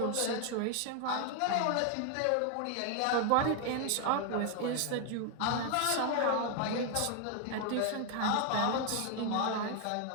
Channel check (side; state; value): both; different; correlation 0.01